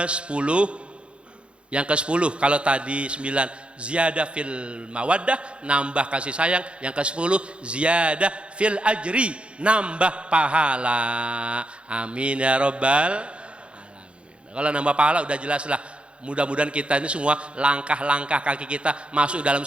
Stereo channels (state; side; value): late; left; 0.058 ms